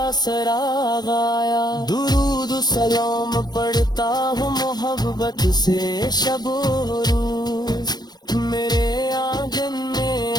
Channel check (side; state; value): right; late; 0.19 ms